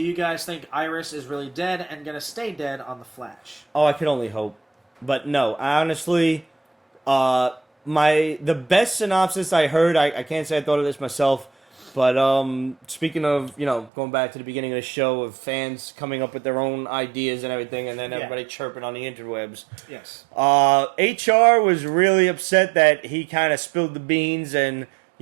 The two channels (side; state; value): left; drops out; at 13.9 s